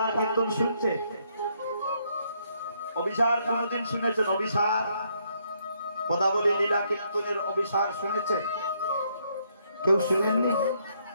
কীর্তন শুনছে? অভিসার কোনদিন শুনেছেন? অভিসার পদাবলী লীলা কীর্তনের অভিসার শুনেছেন? কেউ শুনেননি?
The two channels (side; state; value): both; inverted; correlation -0.73